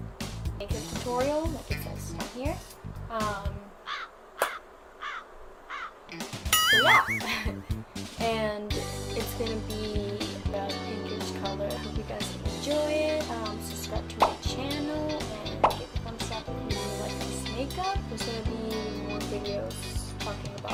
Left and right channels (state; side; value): identical; both; correlation 1.00